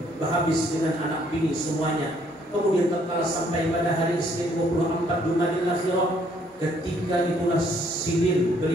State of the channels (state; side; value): normal; both; correlation 0.65